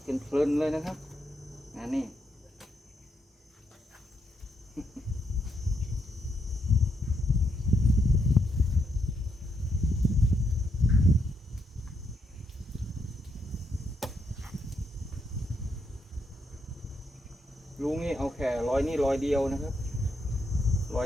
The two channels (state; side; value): normal; both; correlation 0.79